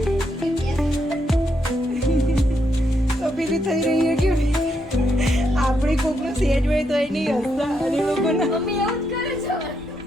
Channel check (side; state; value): both; normal; correlation 0.79